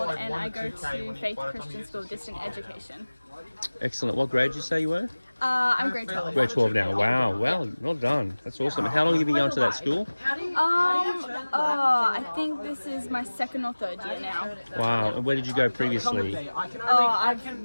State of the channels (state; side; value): inverted; both; correlation -1.00